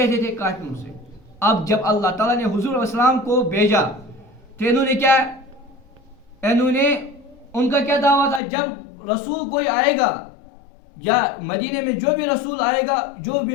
تھے؟ کافروں سے. اب جب اللہ تعالیٰ نے حضور علیہ السلام کو بھیجا تو انہوں نے کیا, انہوں نے ان کا کیا دعویٰ تھا, جب رسول کوئی آئے گا یا مدینے میں جو بھی رسول آئے گا, جو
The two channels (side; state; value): right; drops out; at 8.4 s